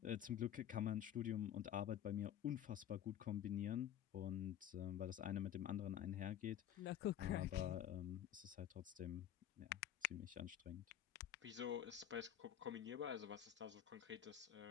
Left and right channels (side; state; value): right; quieter; 10.6 dB